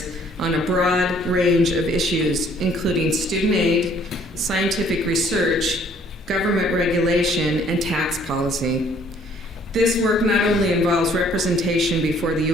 on a broad range of issues, including student aid, scientific research, government regulation, and tax policy. This work not only involves representation before the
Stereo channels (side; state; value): both; normal; correlation 0.60